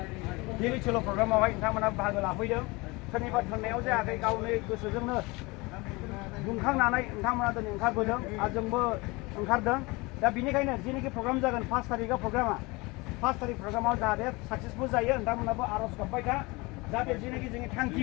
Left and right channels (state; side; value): quieter; right; 24.6 dB